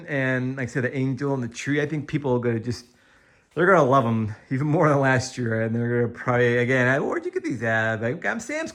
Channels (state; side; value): identical; both; correlation 1.00